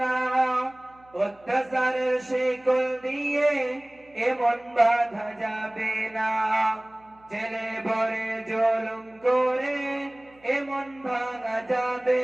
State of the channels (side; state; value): right; noise; hum, 30 dB below the sound